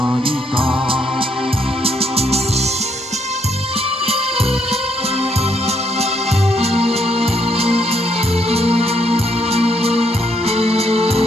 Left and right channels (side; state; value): both; normal; correlation 0.73